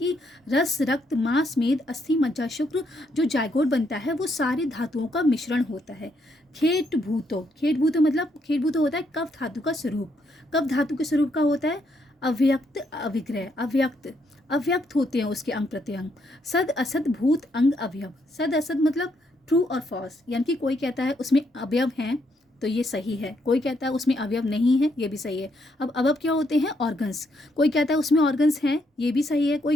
रस रक्त मांस मेद अस्थि मज्जा शुक्र जो जायगोट बनता है वो सारे धातुओं का मिश्रण होता है। खेट भूतो, खेट भूतो मतलब खेट भूतो होता है कफ धातु का स्वरूप। कफ धातु के स्वरूप का होता है अव्यक्त अविग्रह, अव्यक्त अव्यक्त होते हैं उसके अंग प्रत्यंग। सद असद भूत अंग अवयव, सद असद मतलब ट्रू और फॉल्स, यानी कि कोई कहता है उसमें अवयव हैं तो ये सही है, कोई कहता है उसमें अवयव नहीं है, ये भी सही है। अब अवयव क्या होते हैं? ऑर्गन्स। कोई कहता है उसमें ऑर्गन्स हैं, ये भी सही है, कोई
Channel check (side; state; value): both; normal; correlation 0.75